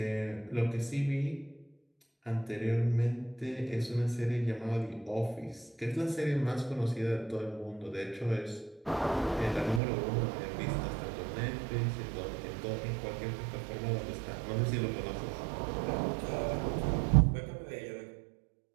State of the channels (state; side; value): drops out; left; at 9.8 s